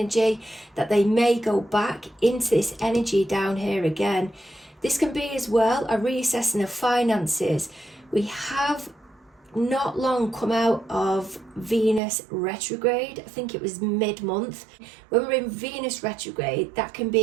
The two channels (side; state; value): left; drops out; at 12.0 s